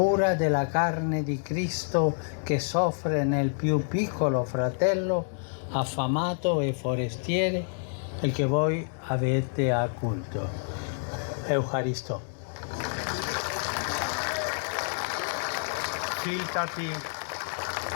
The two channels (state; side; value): silent; right; digital silence